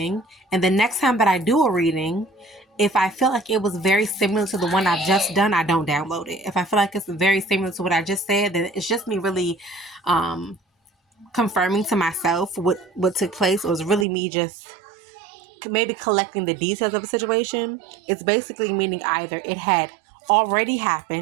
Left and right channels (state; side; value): drops out; left; at 14.1 s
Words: and the next time that I do a reading, if I feel like it was very similar to the one I've just done, I don't download it. If I feel like it's very similar to what I just said, then it's just me really confirming to myself what took place. It was really me just maybe collecting the details of a situation. It's basically meaning either it had already